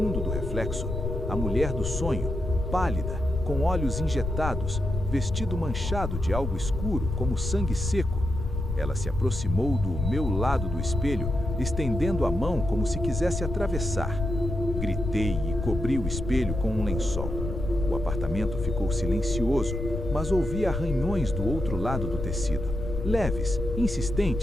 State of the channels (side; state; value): left; noise; rumble, 4 dB below the sound